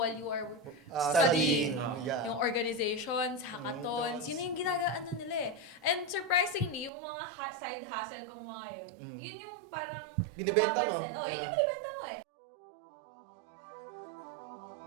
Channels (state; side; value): drops out; left; at 6.9 s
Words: you are studying? Yeah. Yung organizations, hackathons, yun yung ginagaano nila eh. And surprisingly, yung mga side hustle kong mga yun yung parang Binibenta mo. napapansin. Oh, yun yung binibenta mo eh.